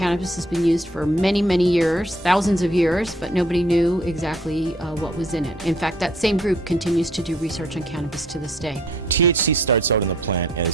has been used for many, many years, thousands of years, but nobody knew exactly what was in it. In fact, that same group continues to do research on cannabis to this day. THC starts out in the plant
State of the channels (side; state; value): both; normal; correlation 0.62